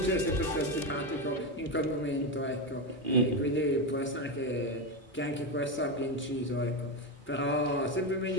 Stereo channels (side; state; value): both; normal; correlation 0.12